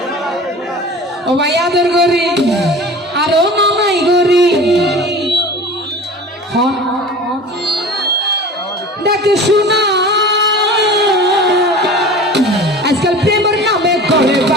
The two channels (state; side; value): normal; both; correlation 0.38